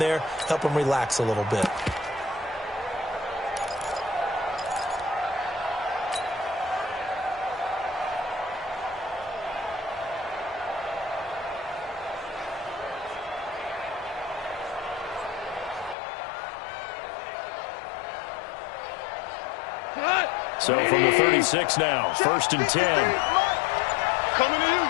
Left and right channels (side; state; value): right; drops out; at 16.0 s